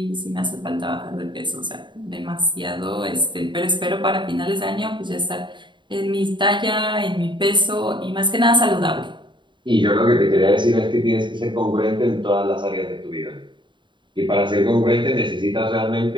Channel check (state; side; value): late; left; 0.23 ms